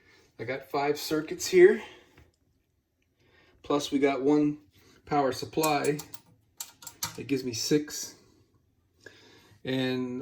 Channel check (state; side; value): identical; both; correlation 1.00